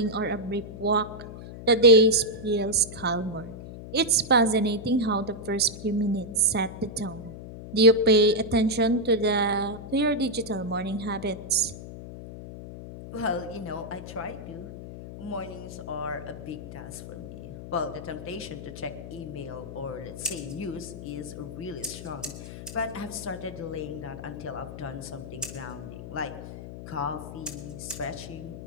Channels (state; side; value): noise; left; hum, 11 dB below the sound